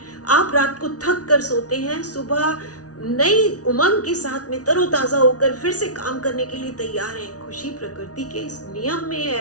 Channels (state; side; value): late; right; 0.68 ms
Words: आप रात को थक कर सोते हैं, सुबह नई उमंग के साथ में तरोताजा होकर फिर से काम करने के लिए तैयार हैं, खुशी प्रकृति के इस नियम में